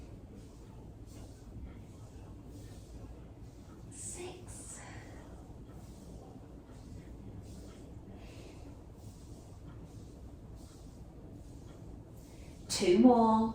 6, 2 more.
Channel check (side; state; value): both; identical; correlation 1.00